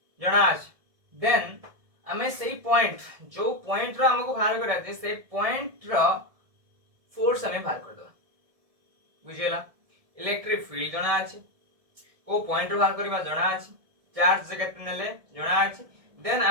जणा अछि देन हमें सही पॉइंट जो पॉइंट रो हमको बाहर करया अछि से पॉइंट रो फोर्स हमें बाहर कर दो बुझिला इलेक्ट्रिक फील्ड जणा अछि को पॉइंट रो बाहर करबा जणा अछि चार्ज से केते नेले जणा अछि देन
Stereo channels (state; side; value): late; left; 1.7 ms